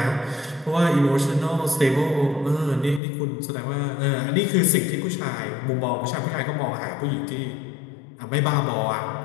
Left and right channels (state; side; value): drops out; right; at 3.0 s